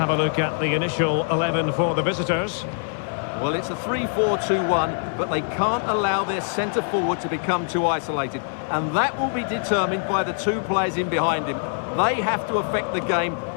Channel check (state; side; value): silent; right; digital silence